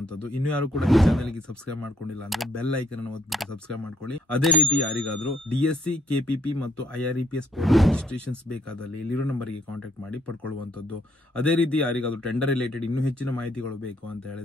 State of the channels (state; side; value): normal; both; correlation 0.68